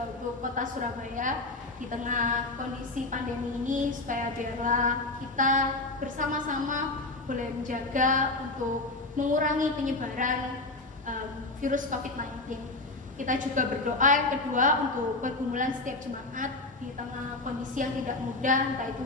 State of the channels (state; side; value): quieter; right; 3.1 dB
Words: untuk kota Surabaya di tengah kondisi pandemi ini, supaya biarlah kita bersama-sama boleh menjaga untuk mengurangi penyebaran virus COVID-19. Kita juga berdoa yang kedua untuk pergumulan setiap jemaat di tengah kondisi yang tidak mudah, entah itu